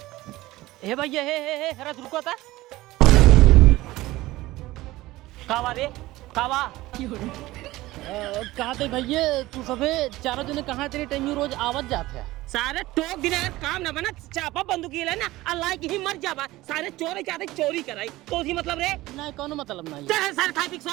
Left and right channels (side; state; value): left; quieter; 18.0 dB